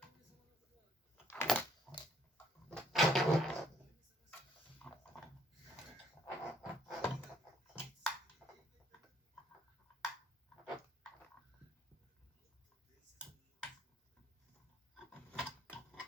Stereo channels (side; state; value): both; normal; correlation 0.65